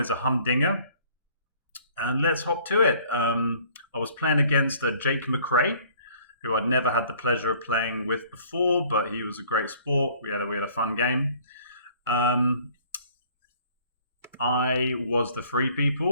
a humdinger, and let's hop to it. I was playing against jakemcrae, who I'd never had the pleasure of playing with before, but he was a great sport. We had a fun game. Um, I was the free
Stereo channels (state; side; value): inverted; both; correlation -0.55